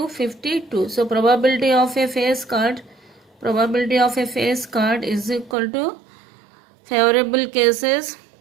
52. So probability of a face card is equal to favorable cases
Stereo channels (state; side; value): drops out; left; at 5.6 s